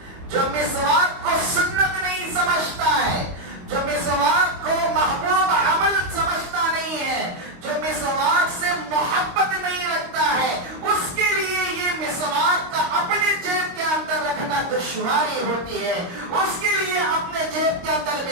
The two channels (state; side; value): late; left; 22 ms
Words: جو مسواک کو سنت نہیں سمجھتا ہے، جو مسواک کو محبوب عمل سمجھتا نہیں ہے، جو مسواک سے محبت نہیں رکھتا ہے، اس کے لیے یہ مسواک کا اپنے جیب کے اندر رکھنا دشواری ہوتی ہے، اس کے لیے اپنے جیب کے اندر